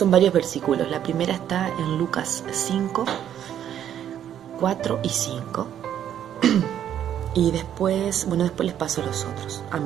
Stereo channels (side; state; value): left; quieter; 10.1 dB